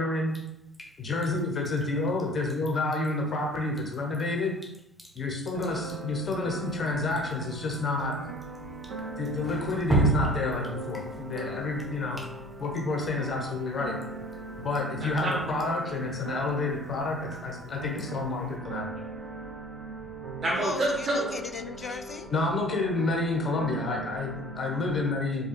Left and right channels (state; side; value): normal; both; correlation 0.48